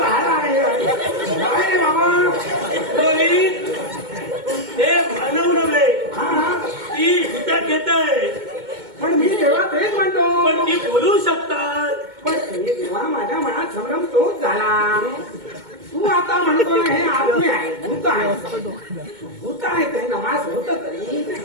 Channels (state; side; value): late; left; 2.2 ms